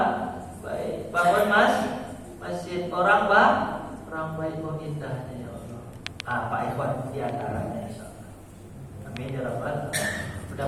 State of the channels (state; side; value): identical; both; correlation 1.00